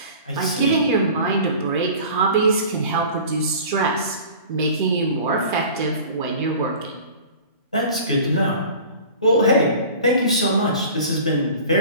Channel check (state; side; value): inverted; both; correlation -0.41